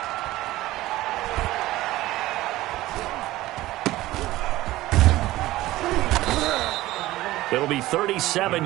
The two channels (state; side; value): quieter; left; 16.9 dB